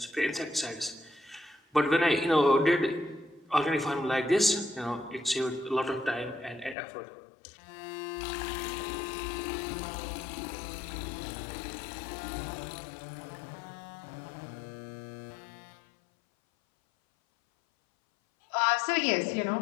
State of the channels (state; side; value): drops out; right; at 6.8 s